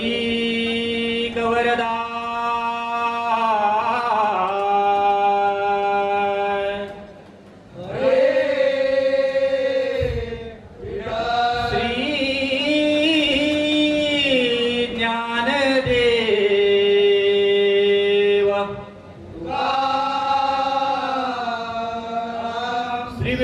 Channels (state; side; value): identical; both; correlation 1.00